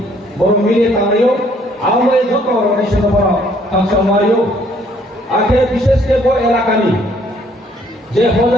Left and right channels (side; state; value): both; normal; correlation 0.63